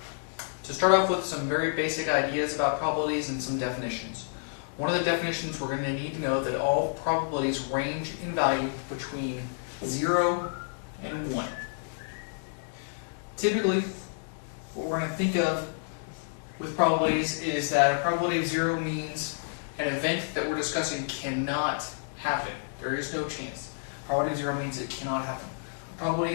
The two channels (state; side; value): silent; right; digital silence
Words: To start off with some very basic ideas about probabilities and some definitions. One of the definitions we're going to need to know that all probabilities range in value between 0 and 1. Typically, what we're going to think of with probabilities is that a probability of 0 means an event that we're discussing cannot happen. There is no chance. Probability of 0 means it cannot happen. Probability